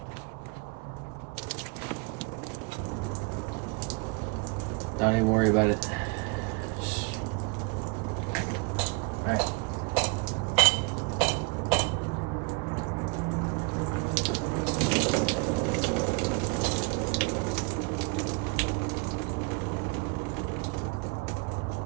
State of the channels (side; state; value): left; quieter; 29.9 dB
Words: Don't even worry about it. Alright.